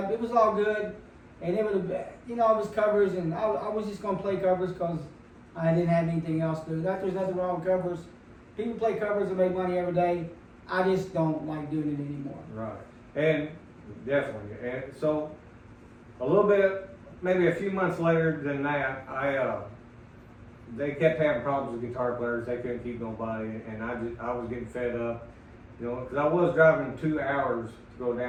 it was all good, and it was, it was covers, and I was just gonna play covers because I didn't have anything else to do. There's nothing wrong with covers. People play covers and make money every day. I just don't like doing it anymore. Right. And definitely. And so a little bit, maybe a few months later than that, they kept having problems with guitar players. They couldn't keep nobody, and I was getting fed up, because I was driving 2 hours to go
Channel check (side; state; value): both; identical; correlation 1.00